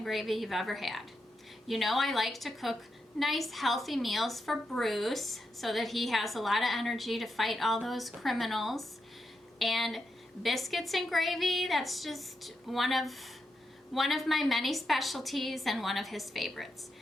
gravy you've ever had. You know I like to cook nice healthy meals for Bruce so that he has a lot of energy to fight all those criminals. And biscuits and gravy, that's just one of my many specialties and one of his favorites.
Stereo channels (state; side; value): normal; both; correlation 0.85